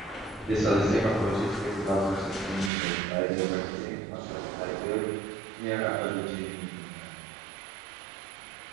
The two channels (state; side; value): drops out; left; at 2.7 s